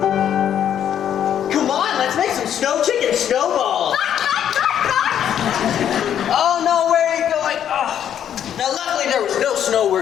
Come on, let's make some snow chicken snowballs. Oh no, where are you going? Oh. Now luckily there was no snow where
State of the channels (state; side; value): quieter; right; 9.7 dB